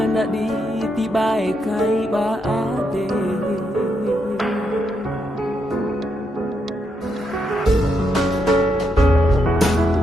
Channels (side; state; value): both; normal; correlation 0.80